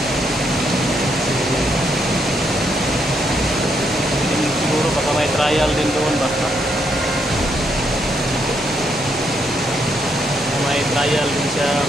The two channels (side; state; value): both; normal; correlation 0.76